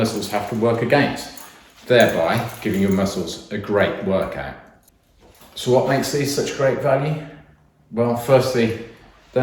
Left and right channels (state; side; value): identical; both; correlation 1.00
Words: have to work against, thereby giving your muscles a great workout. So what makes these such great value? Well, firstly, they're